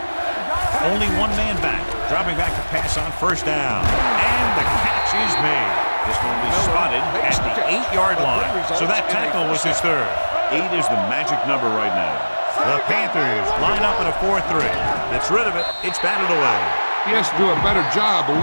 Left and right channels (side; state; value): both; inverted; correlation -1.00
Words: Only one man back. Dropping back to pass on first down. And the catch is made. This one will be spotted at the 8-yard line. So that tackle was his third. 8 is the magic number right now. The Panthers line up in a 4-3. Gets rid of it. It's batted away. He has to do a better job of